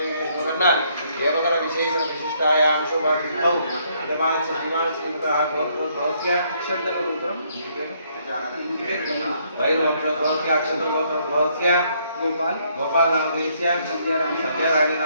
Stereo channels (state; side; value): inverted; both; correlation -0.69